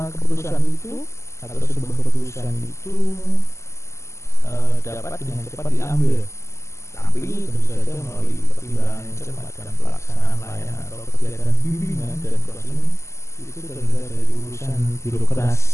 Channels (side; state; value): right; late; 0.13 ms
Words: keputusan itu atau sebuah keputusan itu dapat dengan cepat diambil, tapi tentu saja melalui pertimbangan yang cermat dan pelaksanaan layanan atau kegiatan bimbingan dan konseling itu terhindar dari urusan